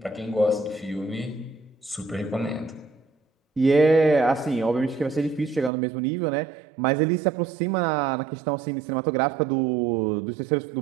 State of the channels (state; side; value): drops out; left; at 5.7 s